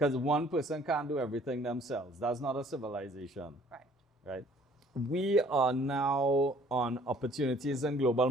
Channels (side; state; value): both; normal; correlation 0.57